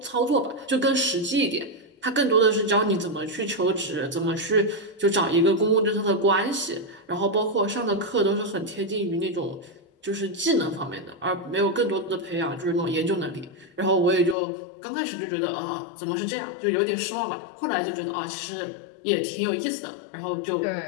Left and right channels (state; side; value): drops out; right; at 14.4 s